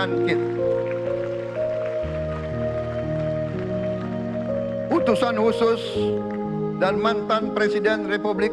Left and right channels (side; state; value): both; identical; correlation 1.00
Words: Utusan khusus dan mantan Presiden Republik